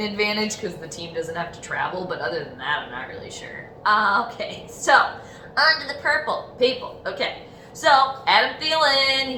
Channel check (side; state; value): both; identical; correlation 1.00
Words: advantage because the team doesn't have to travel, but other than that, I'm not really sure. Okay, so on to the Purple people. Okay. So, Adam Thielen,